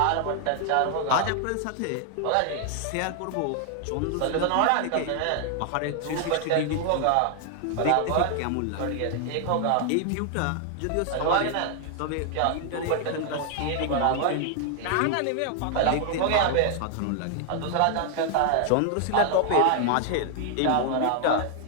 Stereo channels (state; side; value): different; both; correlation 0.00